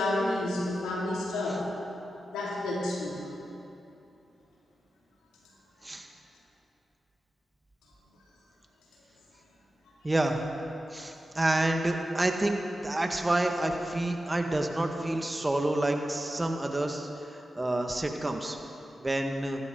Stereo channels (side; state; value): both; normal; correlation 0.92